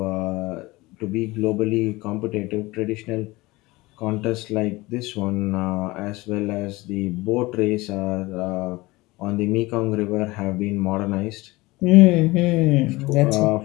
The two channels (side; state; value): right; quieter; 21.2 dB